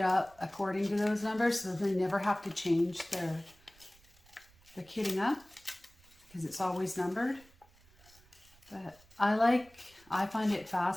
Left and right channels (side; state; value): right; noise; rumble, 28 dB below the sound